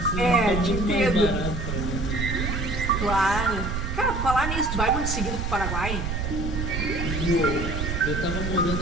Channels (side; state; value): right; noise; rumble, 3 dB below the sound